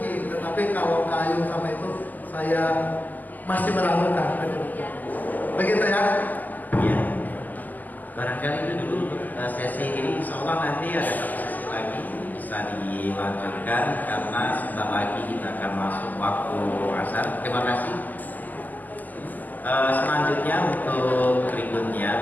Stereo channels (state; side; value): late; right; 0.083 ms